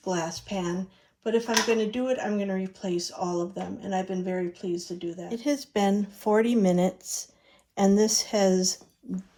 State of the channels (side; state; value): both; identical; correlation 1.00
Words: glass pan, but if I'm going to do it, I'm going to replace all of them. And I've been very pleased to do that. It has been 40 minutes and this has